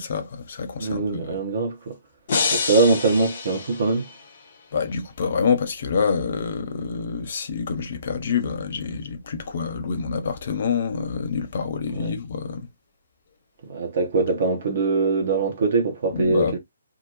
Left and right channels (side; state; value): both; inverted; correlation -0.58